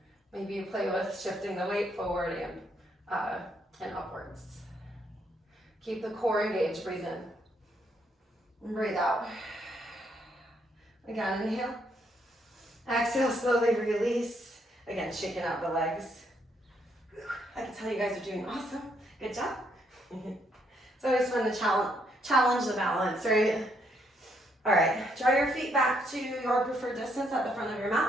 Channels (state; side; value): normal; both; correlation 0.73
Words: Maybe you play with shifting the weight forward and upwards. Keep the core engaged. Breathe in. And breathe out. Again, inhale. Exhale, slowly release. Again, shaking out the legs. I can tell you guys are doing awesome. Good job. It's always fun to challenge the balance, right? All right, draw your feet back to your preferred distance at the front of your